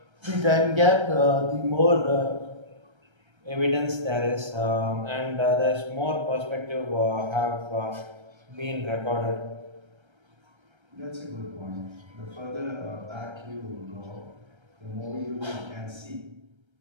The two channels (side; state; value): left; late; 1.3 ms